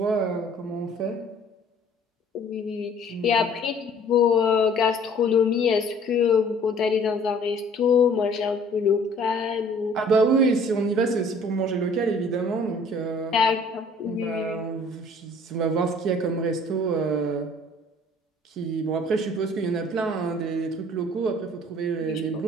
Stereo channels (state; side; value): normal; both; correlation 0.54